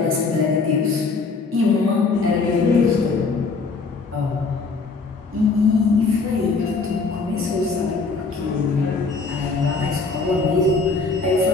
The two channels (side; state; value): right; quieter; 4.2 dB